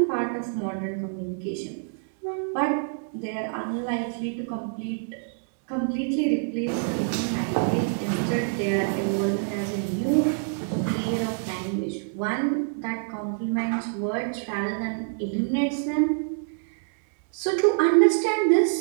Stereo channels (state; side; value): silent; left; digital silence